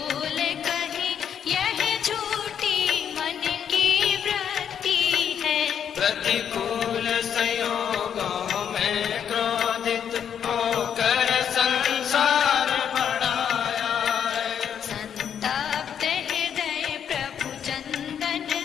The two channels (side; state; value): right; quieter; 8.4 dB